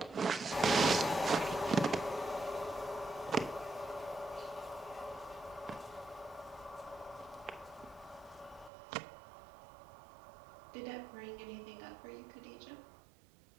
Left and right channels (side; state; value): left; drops out; at 8.7 s